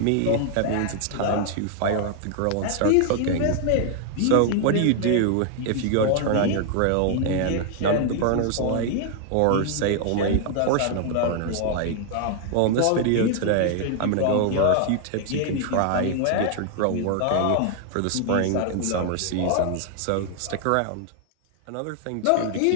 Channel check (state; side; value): different; both; correlation 0.00